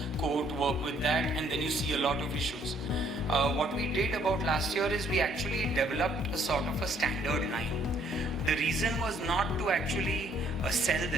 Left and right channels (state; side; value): normal; both; correlation 0.65